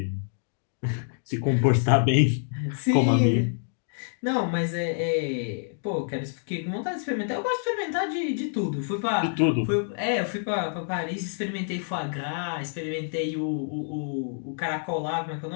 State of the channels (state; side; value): silent; right; digital silence